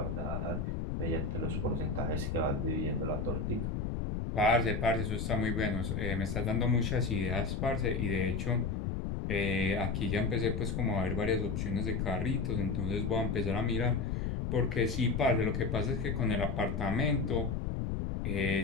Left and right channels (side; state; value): left; noise; rumble, 1 dB below the sound